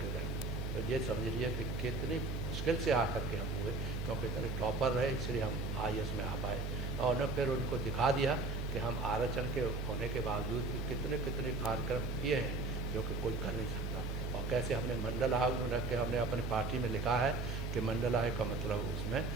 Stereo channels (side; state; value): right; noise; hum, 3 dB below the sound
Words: हो जाएंगे। तो ये समझ लीजिए कि कितनी मुश्किल से आकर के हम हुए, क्योंकि इतने टॉपर रहे इसलिए हम IAS में आ पाए। और न फिर उनको दिखा दिया कि हम आरक्षण के होने के बावजूद भी कितने कितने कार्यक्रम किए हैं जो कि कोई कर नहीं सकता। और कैसे हमने मंडल आयोग में रख के हमने अपनी पार्टी में लिखा है कि मंडल आयोग का मतलब उसमें